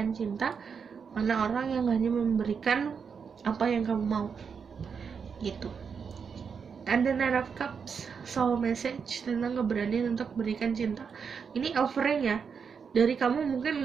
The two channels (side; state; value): left; quieter; 6.2 dB